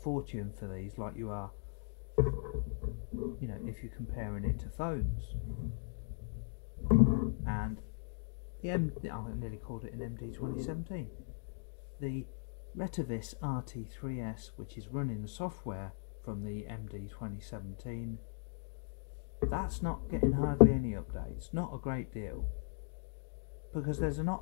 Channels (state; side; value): silent; right; digital silence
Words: for these like you are, you know, if you're comparing it to phones. And the I nearly called it an MD 2017. The Retevis RT3S, which is running the software from the MD 2017, that's not getting hardly any updates. Not a great deal, because there's